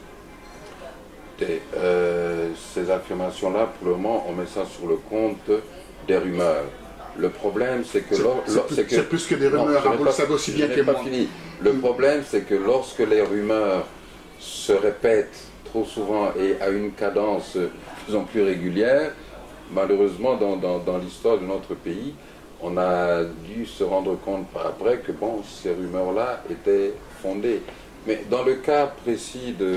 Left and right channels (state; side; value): identical; both; correlation 1.00